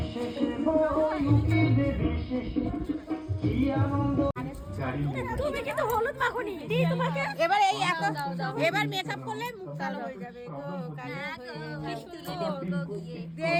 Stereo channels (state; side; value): identical; both; correlation 1.00